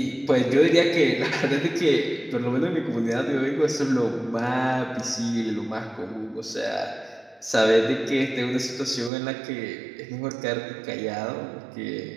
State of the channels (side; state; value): left; drops out; at 9.1 s